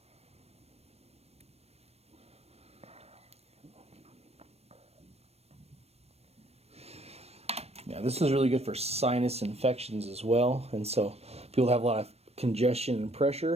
Yeah, this is really good for sinus infections as well. And so people have a lot of congestion and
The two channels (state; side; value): late; left; 0.30 ms